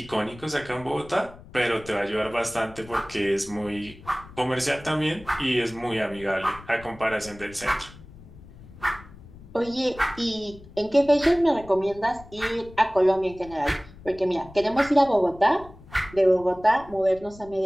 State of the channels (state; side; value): noise; left; rumble, 19 dB below the sound